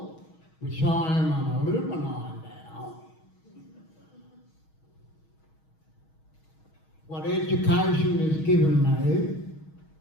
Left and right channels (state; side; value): late; right; 6.3 ms